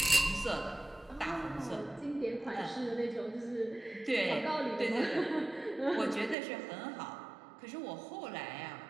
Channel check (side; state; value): left; drops out; at 6.4 s